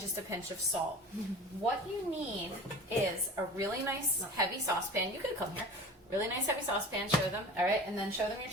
a pinch of salt. What you need is a really nice heavy saucepan. You could come here. Really nice heavy saucepan, show them. All right, and then show them your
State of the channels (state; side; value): normal; both; correlation 0.38